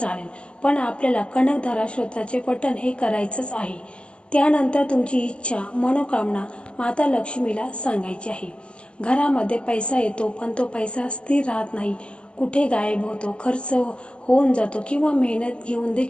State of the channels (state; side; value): late; right; 0.054 ms